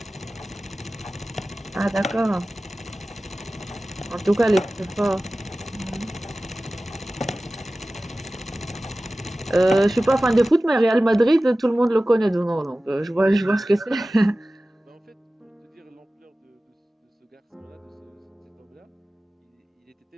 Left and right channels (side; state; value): both; normal; correlation 0.96